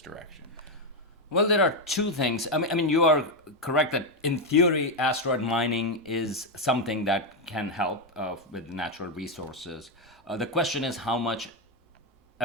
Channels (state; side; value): normal; both; correlation 0.05